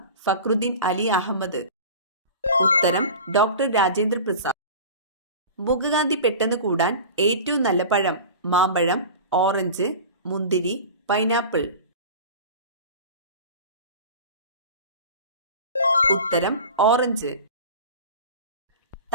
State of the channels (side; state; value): both; inverted; correlation -0.35